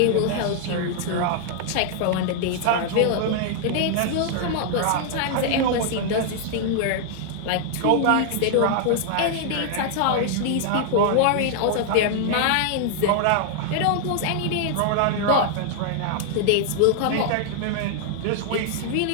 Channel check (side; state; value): both; different; correlation -0.01